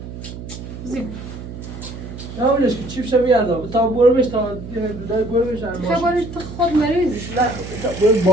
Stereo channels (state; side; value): noise; right; hum, 11 dB below the sound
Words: زیب نه اولش که چیف شو بیاردم تا برو بش تا دودای برو بش خبرش تو خود مریضیش برو